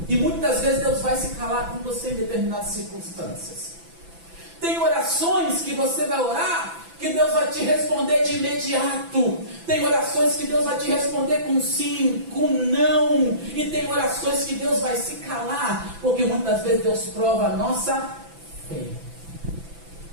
e muitas vezes Deus vai se calar com você em determinadas circunstâncias. Tem orações que você vai orar que Deus vai te responder de imediato. Tem orações que Deus vai te responder com sim, com não. E tem orações que Deus vai se calar, porque muitas vezes Deus prova a nossa fé.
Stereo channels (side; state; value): left; late; 6.0 ms